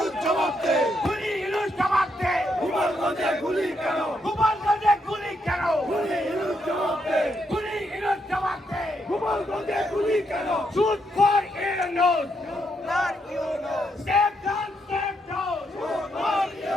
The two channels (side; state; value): both; normal; correlation 0.78